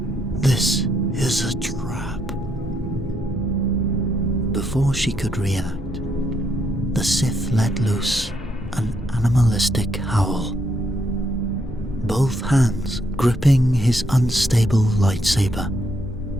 This is a trap. Before she could react, the Sith let loose an animalistic howl. Both hands gripping his unstable lightsaber,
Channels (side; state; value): both; normal; correlation 0.75